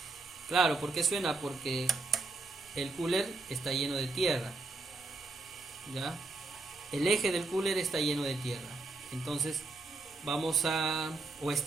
Claro, ¿por qué suena? Porque el cooler está lleno de tierra, ¿ya? El eje del cooler está lleno de tierra. Entonces o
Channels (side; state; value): left; quieter; 3.3 dB